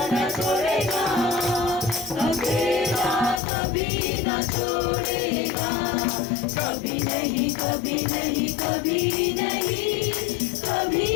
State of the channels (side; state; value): right; drops out; at 3.4 s